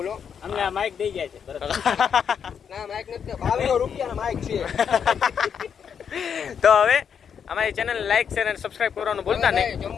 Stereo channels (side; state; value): right; quieter; 7.4 dB